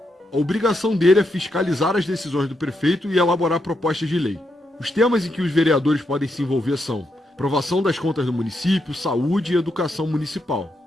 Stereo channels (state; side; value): normal; both; correlation 0.81